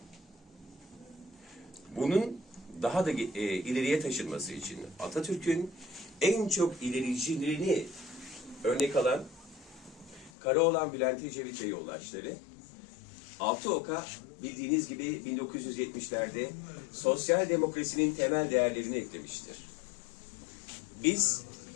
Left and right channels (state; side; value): drops out; right; at 10.3 s